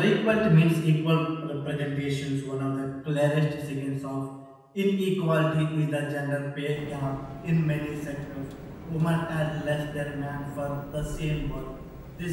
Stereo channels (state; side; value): identical; both; correlation 1.00